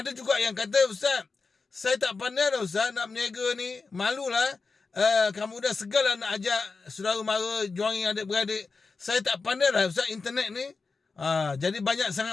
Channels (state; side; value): quieter; right; 4.4 dB